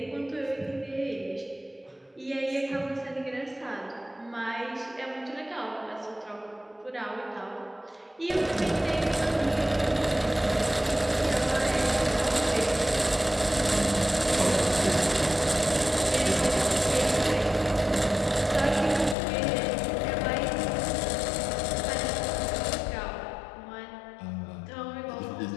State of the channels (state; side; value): drops out; right; at 19.2 s